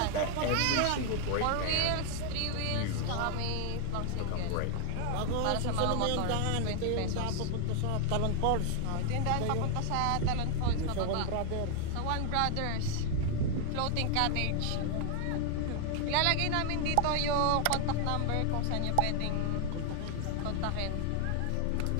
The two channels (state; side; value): different; both; correlation 0.00